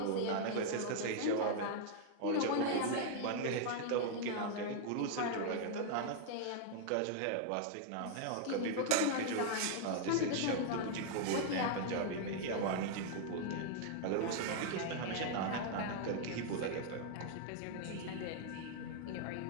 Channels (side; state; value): both; different; correlation -0.01